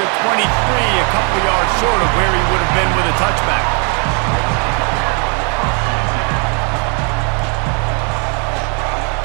23, a couple of yards short of where he would have been with a touchback.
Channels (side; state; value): left; quieter; 36.4 dB